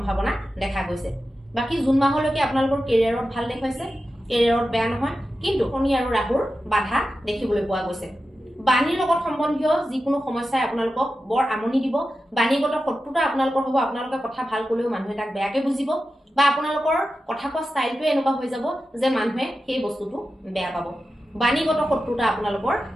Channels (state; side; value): normal; both; correlation 0.92